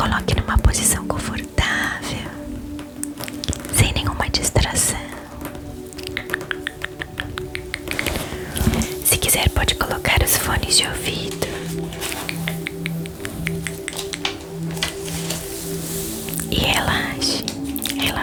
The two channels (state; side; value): identical; both; correlation 1.00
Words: numa posição confortável, sem nenhuma distração. Se quiser, pode colocar os fones de ouvido. E relaxe,